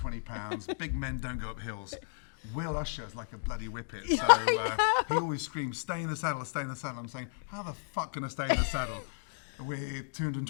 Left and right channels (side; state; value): right; silent; digital silence